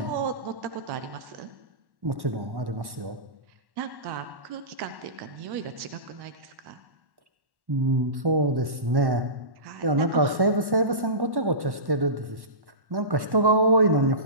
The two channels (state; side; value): late; left; 1.1 ms